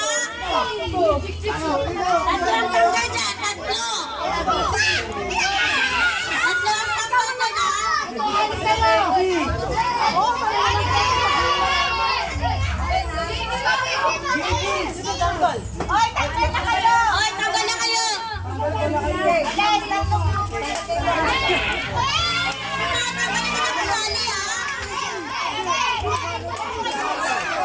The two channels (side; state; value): both; identical; correlation 1.00